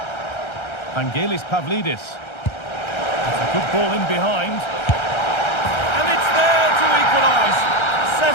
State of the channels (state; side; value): late; right; 1.3 ms